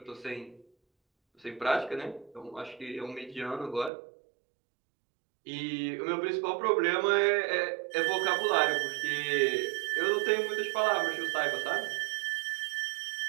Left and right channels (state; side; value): drops out; left; at 3.9 s